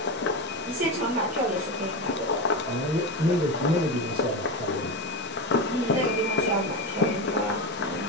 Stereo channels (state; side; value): normal; both; correlation 0.18